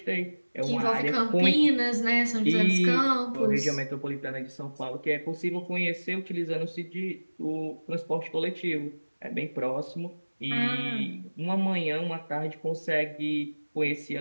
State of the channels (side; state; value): both; inverted; correlation -1.00